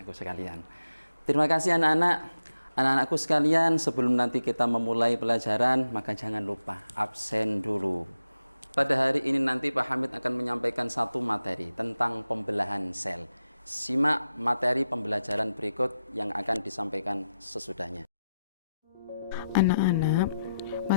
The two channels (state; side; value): inverted; both; correlation -0.88